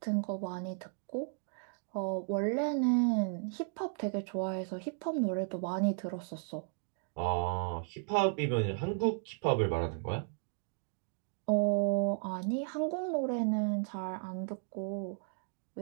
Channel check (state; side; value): silent; left; 55 dB below the other